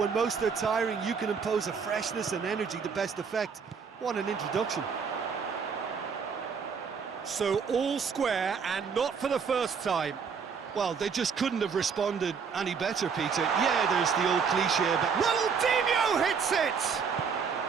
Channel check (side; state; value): left; quieter; 6.1 dB